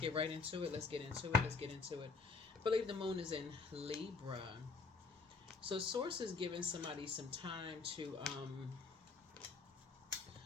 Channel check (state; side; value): quieter; right; 4.4 dB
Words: right into it. Let's get into it. Let's get into it. I believe the moon is in Libra. So Source is giving somebody some time to,